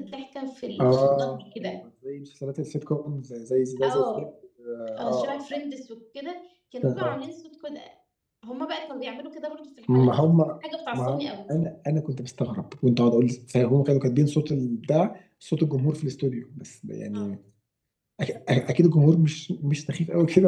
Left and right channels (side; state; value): both; identical; correlation 1.00